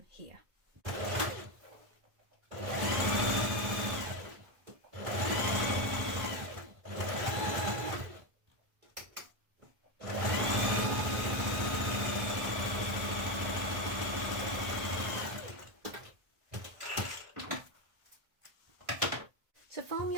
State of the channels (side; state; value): left; late; 1.5 ms